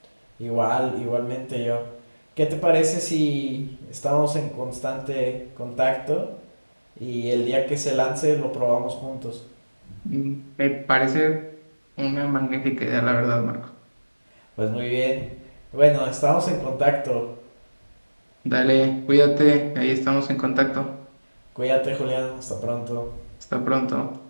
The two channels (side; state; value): both; inverted; correlation -1.00